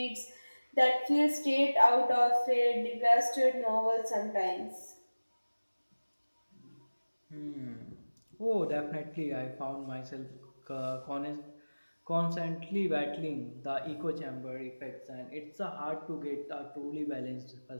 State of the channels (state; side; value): inverted; both; correlation -1.00